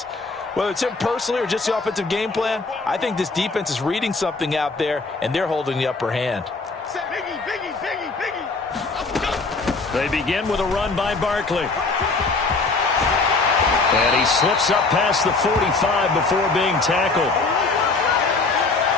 Whether it's him personally or just the offensive game plan, I think this defense is reading something out there, and they're holding the upper hand. They begin with a run by Barkley. And he slips up past the 45 before being tackled.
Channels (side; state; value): right; quieter; 3.8 dB